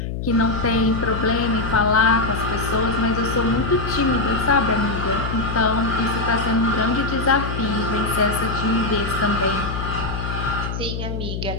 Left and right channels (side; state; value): left; noise; hum, 4 dB below the sound